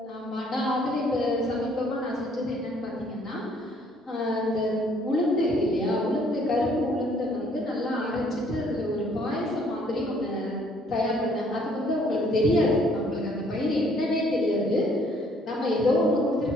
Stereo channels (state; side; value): normal; both; correlation 0.62